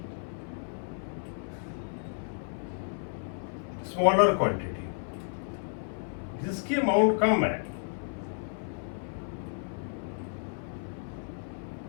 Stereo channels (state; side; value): silent; right; 56 dB below the other